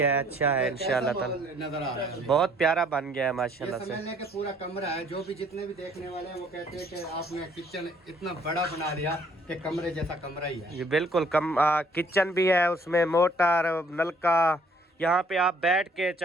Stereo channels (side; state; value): both; normal; correlation 0.61